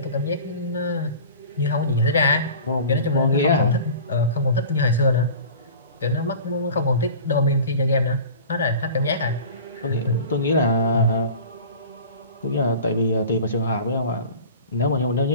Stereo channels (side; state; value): both; inverted; correlation -0.40